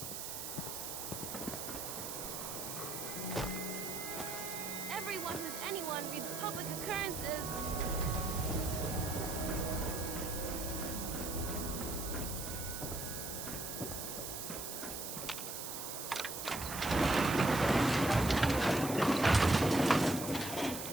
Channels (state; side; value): noise; right; hiss, 6 dB below the sound